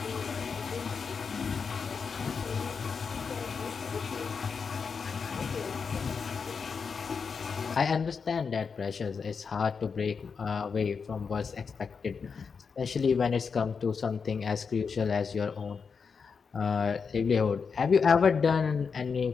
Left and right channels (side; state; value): right; quieter; 5.6 dB